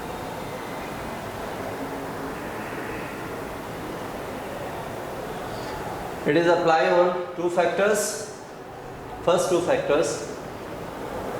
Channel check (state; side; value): identical; both; correlation 1.00